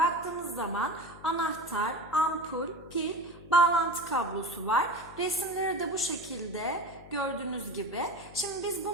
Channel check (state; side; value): noise; left; hum, 19 dB below the sound